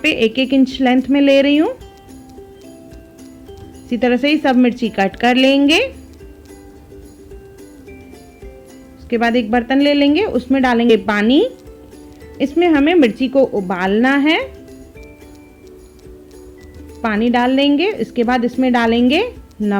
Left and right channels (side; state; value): both; identical; correlation 1.00